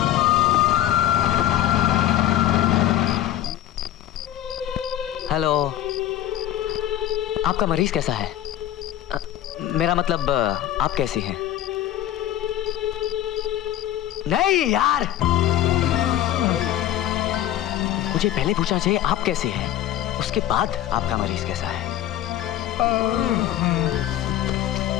हेलो, आपका मरीज कैसा है? मेरा मतलब आप कैसी हैं? नहीं यार, मुझे पहले पूछना चाहिए आप कैसे हैं, उसके बाद आपका मरीज कैसा है।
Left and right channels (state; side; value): quieter; right; 12.5 dB